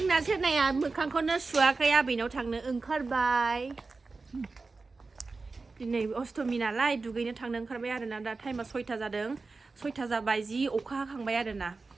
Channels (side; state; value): left; quieter; 3.9 dB